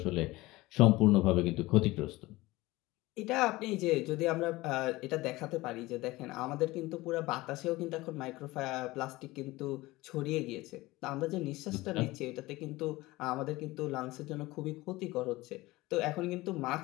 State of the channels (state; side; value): quieter; right; 19.7 dB